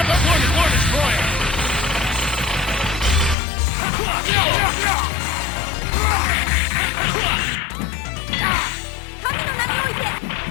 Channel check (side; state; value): right; drops out; at 3.4 s